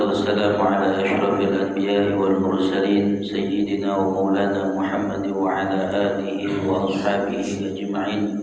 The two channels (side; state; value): both; identical; correlation 1.00